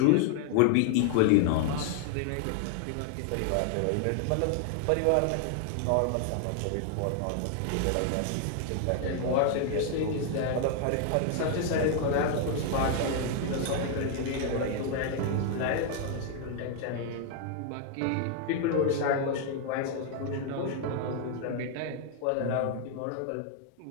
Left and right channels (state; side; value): different; both; correlation 0.00